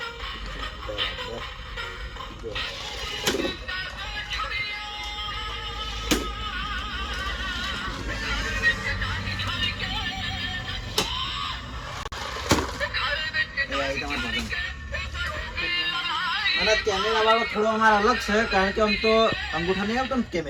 અને કેમેરા વાળો થોડો અમારો અલગ છે કારણ કે આમ તો અંગૂઠા નહીં આવતો ને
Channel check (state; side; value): identical; both; correlation 1.00